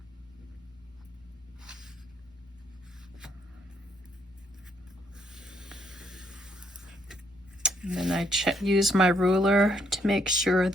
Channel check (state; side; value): normal; both; correlation 0.71